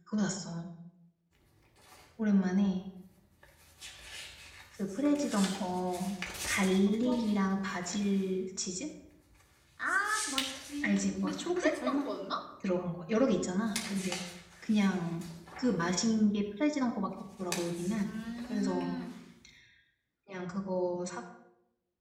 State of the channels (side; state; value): both; identical; correlation 1.00